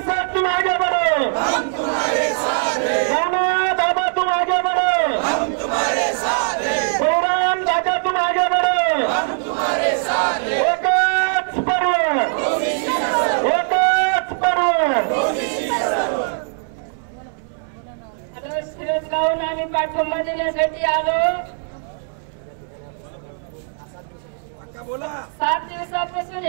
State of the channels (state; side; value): silent; left; 65 dB below the other